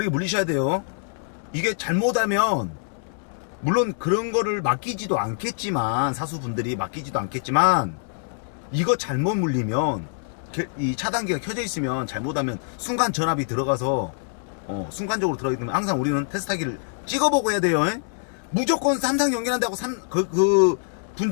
물리셔야 돼요. 이게 잘못하면, 물론 그런 거를 맡기지도 않겠지만, 사수분들이 맡기지도 않겠지만, 이거 잘못 물리면, 이 차단기가 켜져 있으면 잘못하면 순간 전압이 들어가서, 순간적으로 들어가기 때문에 항상 우리는 테스트하기를 찍어보고 해야 돼요. 무조건 3상 연결한다고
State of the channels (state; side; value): silent; right; 62 dB below the other